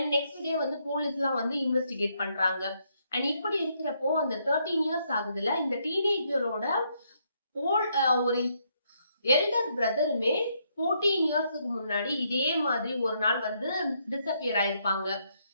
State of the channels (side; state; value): both; inverted; correlation -0.75